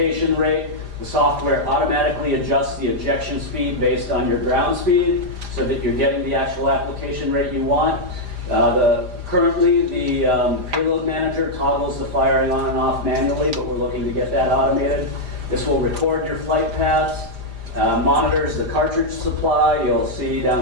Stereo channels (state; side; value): late; left; 4.9 ms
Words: rate. The software automatically adjusts the ejection speed based on your ground speed so that you're getting the actual application rate you want. Currently, the payload manager toggles the firing on and off manually, but we're looking to get that automated. This will record your flight paths, monitors the cartridge supply. You'll see down